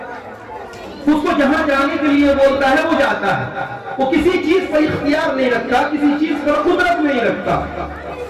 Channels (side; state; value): both; identical; correlation 1.00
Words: اس کو جہاں جانے کے لیے بولتا ہے وہ جاتا ہے۔ وہ کسی چیز پر اختیار نہیں رکھتا، کسی چیز پر قدرت نہیں رکھتا۔